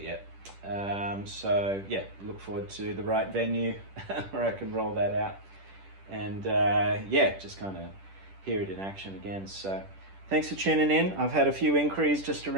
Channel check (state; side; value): late; left; 10 ms